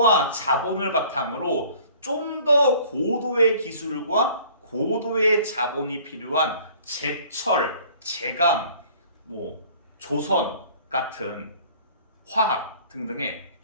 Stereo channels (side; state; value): both; inverted; correlation -0.51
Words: 자본을 바탕으로 좀 더 고도의 기술과 고도의 자본이 필요한 제철, 제강, 조선 같은 화학 등등의